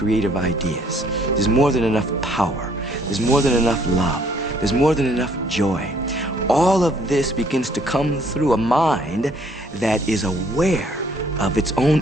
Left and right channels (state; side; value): normal; both; correlation 0.63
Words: ideas. There's more than enough power. There's more than enough love. There's more than enough joy. All of this begins to come through a mind that is aware of its own